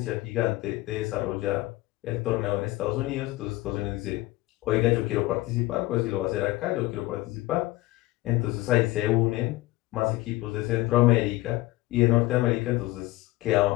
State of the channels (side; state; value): right; quieter; 18.9 dB